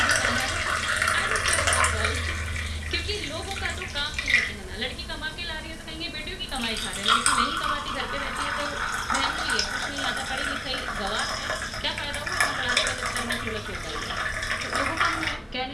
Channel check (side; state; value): both; identical; correlation 1.00